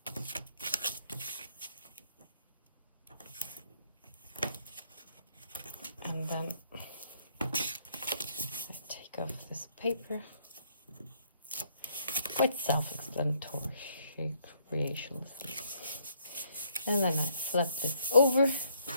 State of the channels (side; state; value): both; inverted; correlation -0.69